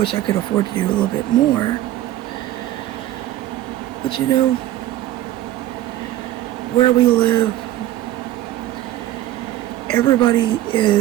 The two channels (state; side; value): quieter; left; 14.1 dB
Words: I could afford to do a little bit more. But where we live, everybody